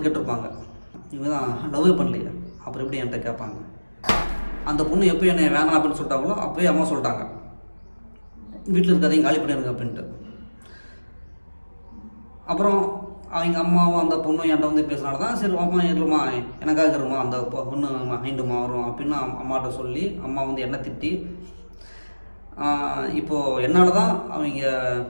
கேட்டிருப்பாங்க, இவங்க தான் லவ்வே பண்ணலையே அப்புறம் எப்படி என்கிட்ட கேட்பாங்க. அந்த பொண்ணு எப்போ என்னை வேணாம் அப்படின்னு சொல்லிட்டாங்களோ அப்போயே அம்மா சொல்லிட்டாங்க, வீட்டில் இருக்காதையும் காலி பண்ணிடுங்க அப்படின்ட்டு. அப்புறம் அவங்க அம்மாவும் அந்த பொண்ணும் என்கிட்ட வந்து பேசுனால தான் சரி அம்மா இருமா எனக்காக இருமா அந்த பொண்ணு மைண்டுமா வரும் அப்படின்னு அம்மாட்ட சொல்லி அம்மா வந்து என்னை திட்டி இப்போது என்னால் தான் அவங்க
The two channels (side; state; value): both; inverted; correlation -1.00